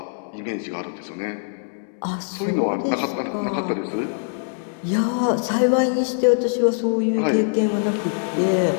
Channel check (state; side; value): silent; right; digital silence